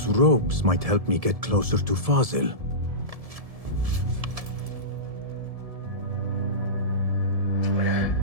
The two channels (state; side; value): late; left; 1.7 ms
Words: robes might help me get closer to Fazil.